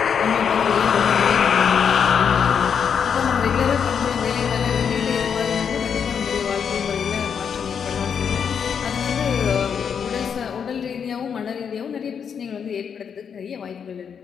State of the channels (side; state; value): right; quieter; 7.2 dB